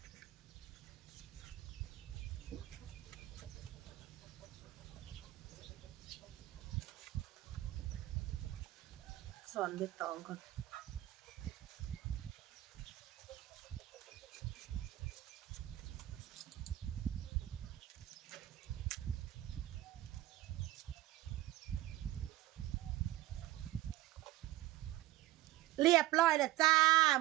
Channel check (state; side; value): quieter; left; 15.5 dB